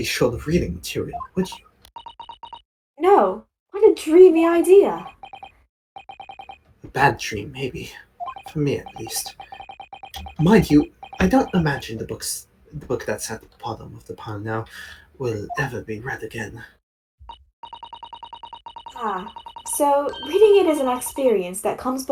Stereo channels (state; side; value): identical; both; correlation 1.00